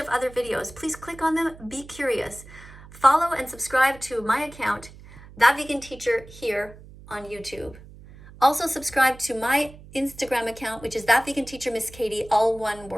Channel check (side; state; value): right; noise; hum, 19 dB below the sound